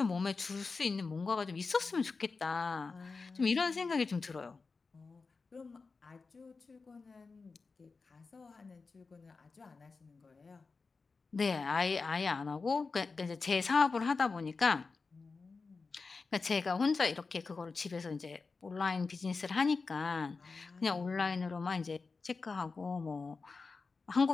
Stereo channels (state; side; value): quieter; right; 4.3 dB